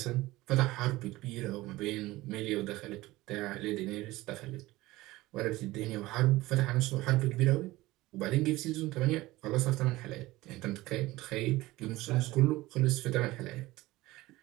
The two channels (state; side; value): quieter; left; 18.7 dB